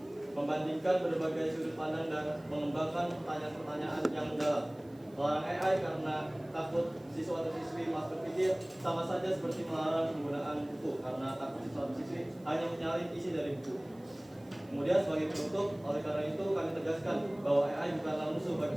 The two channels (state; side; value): noise; right; hiss, 30 dB below the sound